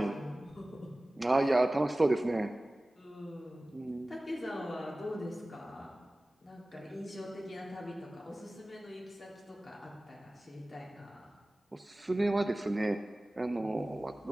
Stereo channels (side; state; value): both; normal; correlation 0.97